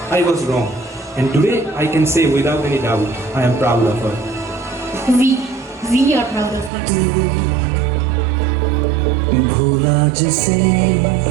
I was wrong. And today I can say without any doubt, I am proud of her. We are proud of her. भूला जिसे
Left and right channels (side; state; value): left; drops out; at 6.7 s